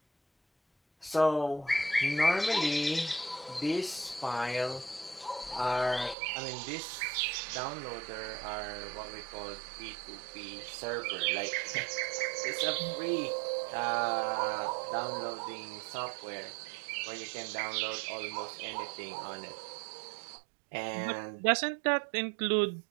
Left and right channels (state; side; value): drops out; left; at 6.2 s